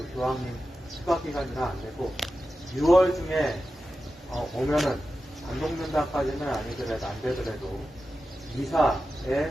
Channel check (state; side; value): normal; both; correlation 0.92